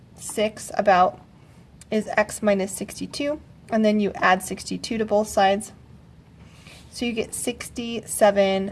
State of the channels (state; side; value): identical; both; correlation 1.00